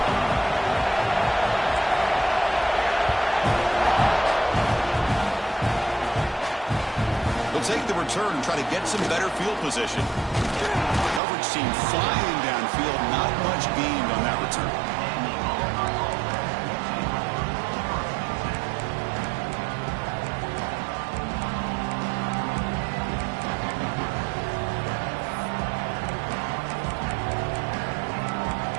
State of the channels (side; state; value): left; drops out; at 11.2 s